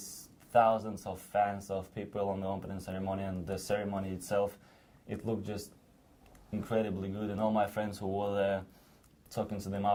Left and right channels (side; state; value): both; identical; correlation 1.00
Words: thousands of fans of people on the opening ceremony, and the ceremony itself, it looked just incredibly good. And all my friends who were there, talking to them